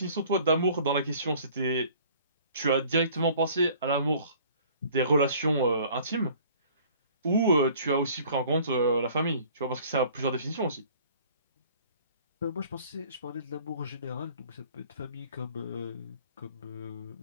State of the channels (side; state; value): both; inverted; correlation -0.51